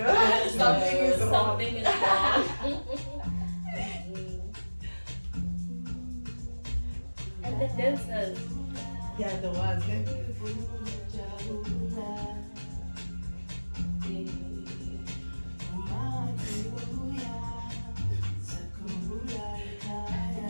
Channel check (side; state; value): both; inverted; correlation -1.00